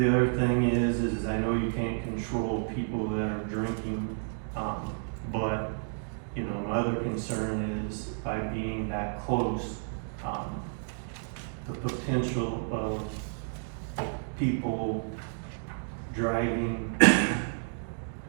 other thing is I know you can't control people that are drinking, but my other concern is by being that close, the potential of people driving,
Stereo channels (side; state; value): left; silent; digital silence